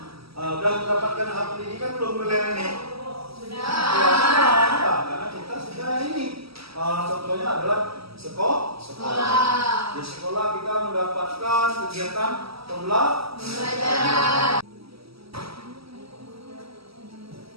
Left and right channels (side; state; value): left; late; 0.76 ms